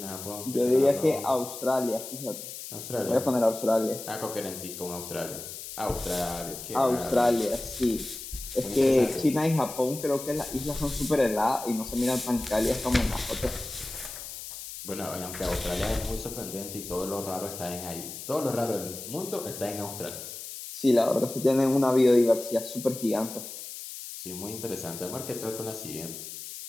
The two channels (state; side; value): noise; left; hiss, 10 dB below the sound